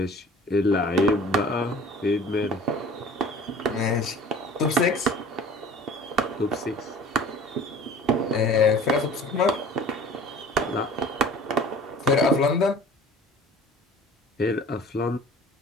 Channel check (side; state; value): both; normal; correlation 0.45